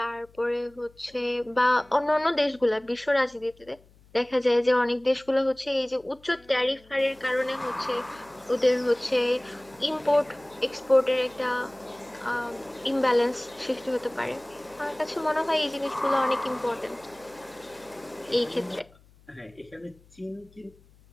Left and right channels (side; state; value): left; noise; hum, 28 dB below the sound